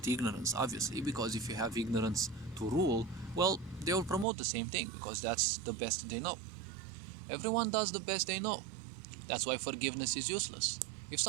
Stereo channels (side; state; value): left; drops out; at 4.2 s